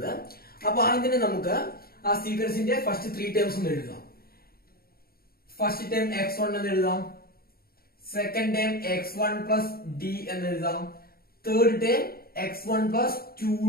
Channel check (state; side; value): late; right; 0.44 ms